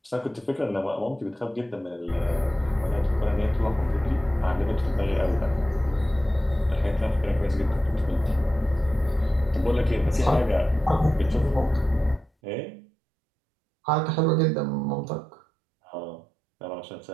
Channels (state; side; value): drops out; left; at 12.3 s